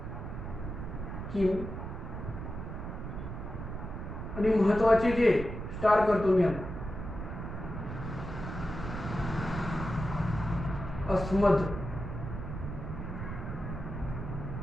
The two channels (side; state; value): right; noise; rumble, 7 dB below the sound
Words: किम. आणि महत्वाचे जे स्टार करतो मी आता अस्मद